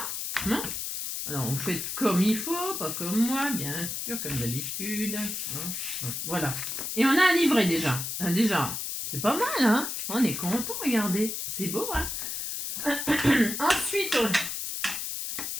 Non. Alors, vous faites comme il faut, pas comme moi, bien sûr, comme d'habitude. Voilà. Et on a un livret déjà. Déjà. C'est pas mal, hein? On est content, regardez. C'est beau, hein? Ensuite,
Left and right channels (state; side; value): noise; left; hiss, 4 dB below the sound